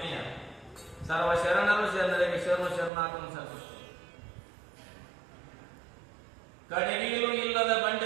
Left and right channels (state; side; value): drops out; left; at 2.9 s